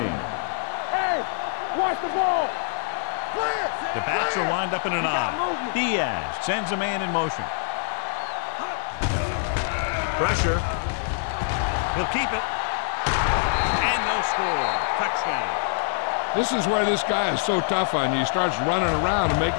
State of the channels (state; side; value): silent; right; digital silence